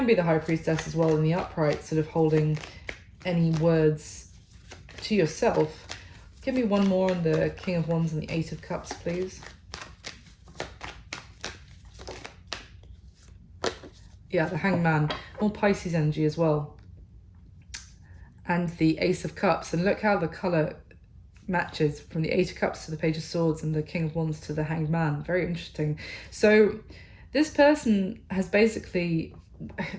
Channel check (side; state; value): both; identical; correlation 1.00